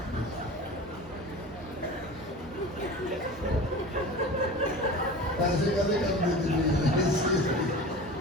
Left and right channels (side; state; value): both; normal; correlation 0.34